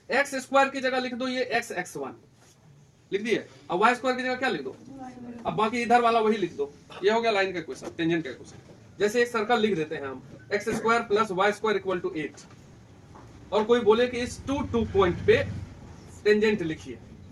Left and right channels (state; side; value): identical; both; correlation 1.00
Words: एक्स स्क्वायर की जगह लिख दो ये x1 लिख दिए, अब y स्क्वायर की जगह क्या लिख दो, अब बाकी इधर वाला वही लिख दो, ये हो गया लाइन का इक्वेशन, टेंजेंट का इक्वेशन। जैसे एक सर्कल लिख देते हैं हम, x square plus Y square equal to 8, और कोई बोले कि इस 2 पॉइंट पे टेंजेंट लिखिए।